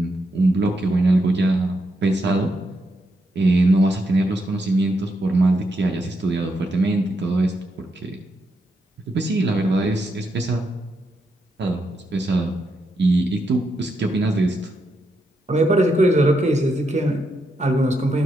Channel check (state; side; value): normal; both; correlation 0.81